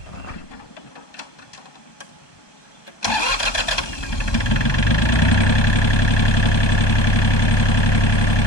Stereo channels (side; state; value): right; late; 1.2 ms